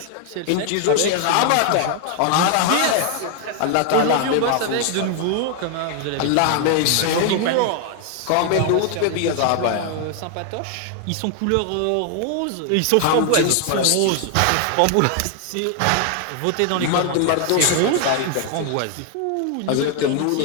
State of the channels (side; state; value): both; different; correlation 0.00